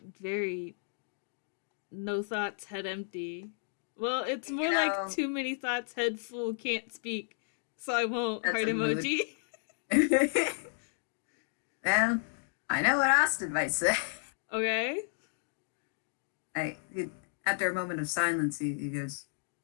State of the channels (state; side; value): silent; right; digital silence